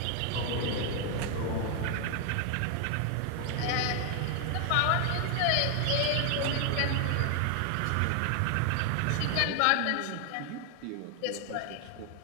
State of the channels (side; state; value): both; different; correlation 0.00